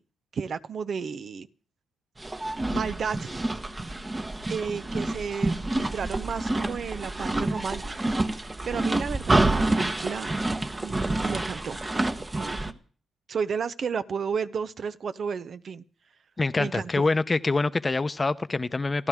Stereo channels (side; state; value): both; normal; correlation 0.92